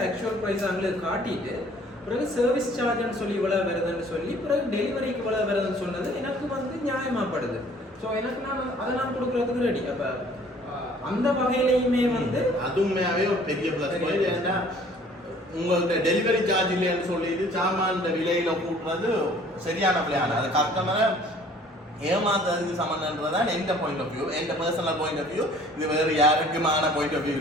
ஆக்சுவல் ப்ரைஸ் அவங்களுக்கு காட்டிட்டு பிறகு சர்வீஸ் சார்ஜ்னு சொல்லி இவ்வளோ வருதுன்னு சொல்லி பிறகு டெலிவரிக்கு இவ்வளோ வருதுன்னு சொன்னது எனக்கு வந்து நியாயமாகப்படுது. ஸோ எனக்கு நான் கொடுக்குறதுக்கு ரெடி. அப்போ அந்த வகையிலையுமே வந்து அதுவுமே ஒரு பெரிய ப்ளஸ் பாயிண்ட். ஏன்னா உங்கள்கிட்ட டெலிவரி சார்ஜ் இல்லைன்னு சொல்லிட்டு சாமான் விலையில கூட்டுறது சரியான பிளான். அது கஸ்டமரை ஏமாத்துறதுக்கு சம்மந்தன்றதான் எந்த பாயிண்ட் ஆஃப் வியூ, எந்த பர்சனல் பாயிண்ட் ஆஃப் வியூ. இது வேறு யாருக்குமான பாயிண்ட் ஆஃப் வியூ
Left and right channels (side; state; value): both; normal; correlation 0.54